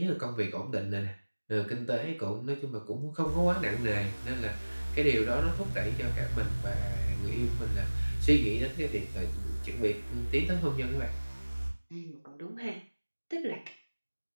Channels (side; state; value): both; inverted; correlation -1.00